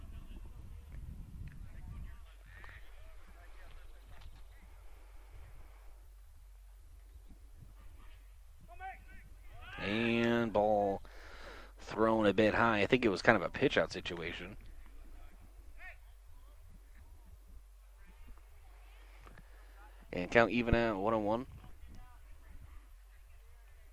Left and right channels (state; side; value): identical; both; correlation 1.00